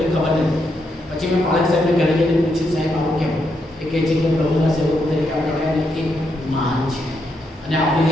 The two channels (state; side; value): normal; both; correlation 0.80